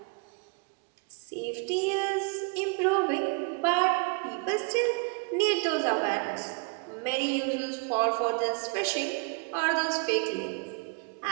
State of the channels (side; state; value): left; quieter; 35.2 dB